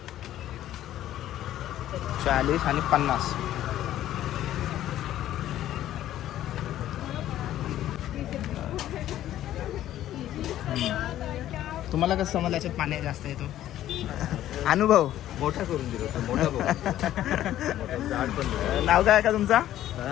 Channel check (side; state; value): right; quieter; 12.8 dB